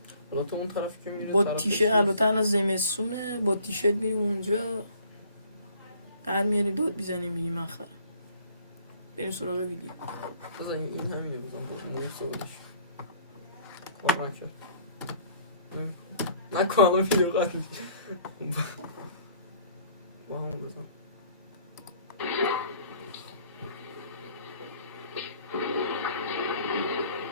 حالا تو اون طرفی که میره با تیشرت، البته الان زمستونه، با تیشرت میریم اونجا در میاریم داد بیزنیم میگیم من خرم. بریم سراغ ویدیو. بزن این همینه بزن نیم سوالش کار نکن الان ویدیو قد با همون بزن.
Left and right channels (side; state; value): both; inverted; correlation -0.57